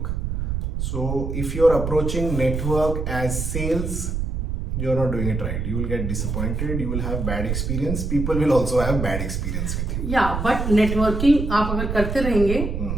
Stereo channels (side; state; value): right; noise; rumble, 2 dB below the sound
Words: So if you're approaching network as sales, you're not doing it right. You will get disappointed. You will have bad experience. People will also have bad experience with you. या but networking आप अगर करते रहेंगे